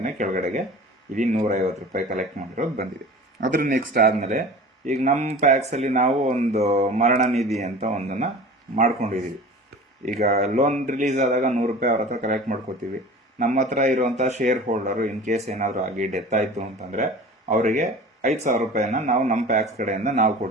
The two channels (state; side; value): normal; both; correlation 0.39